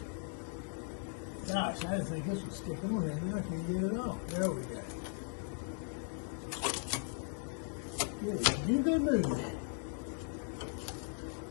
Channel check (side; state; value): right; silent; 52 dB below the other